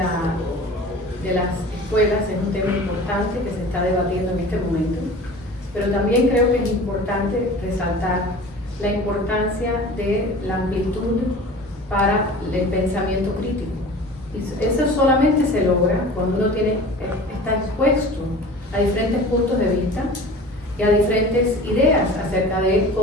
las escuelas es un tema importante que se está debatiendo en este momento, pero también creo que es importante resaltar la importancia de la amplitud para el pensamiento crítico. Y eso solamente se logra cuando uno está expuesto a diferentes puntos de vista y a diferentes ideas acerca de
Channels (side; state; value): both; normal; correlation 0.40